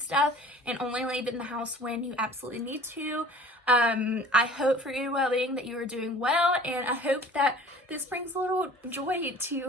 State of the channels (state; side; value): normal; both; correlation 0.47